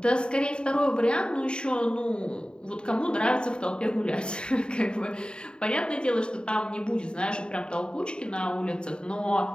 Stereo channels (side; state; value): right; late; 0.050 ms